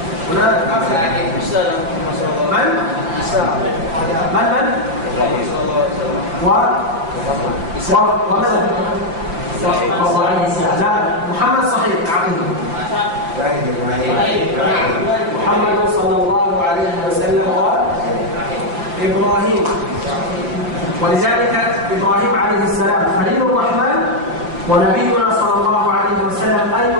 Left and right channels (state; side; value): late; left; 6.0 ms